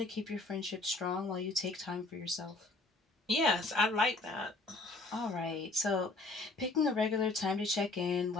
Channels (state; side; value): quieter; right; 3.1 dB